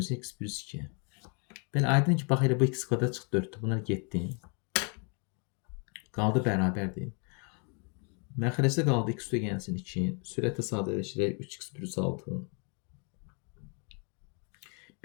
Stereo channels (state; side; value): quieter; right; 37.4 dB